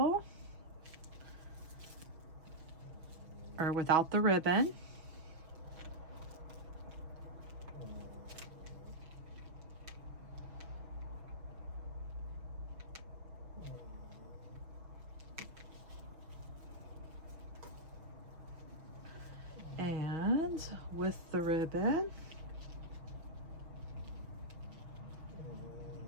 or without the ribbon. And with the ribbon.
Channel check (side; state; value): left; late; 6.2 ms